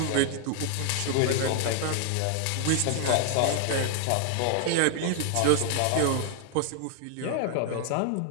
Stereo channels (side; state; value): both; different; correlation 0.00